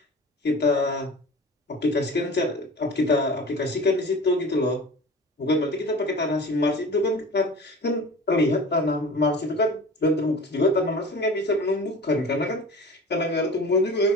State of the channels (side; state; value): both; normal; correlation 0.38